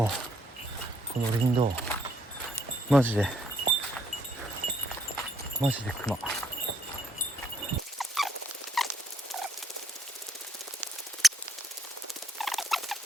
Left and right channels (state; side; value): normal; both; correlation 0.70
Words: の林道、マジで熊。こ